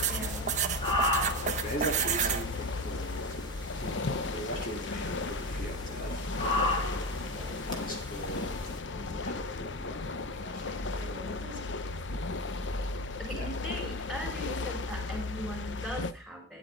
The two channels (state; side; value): normal; both; correlation 0.22